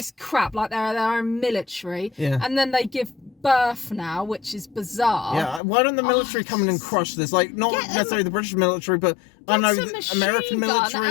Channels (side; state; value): right; drops out; at 5.6 s